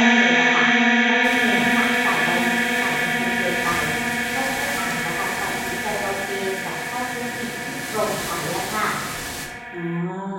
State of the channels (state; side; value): identical; both; correlation 1.00